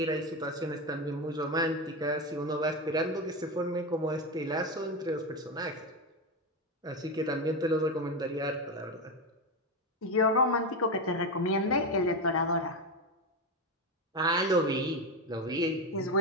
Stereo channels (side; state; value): both; normal; correlation 0.14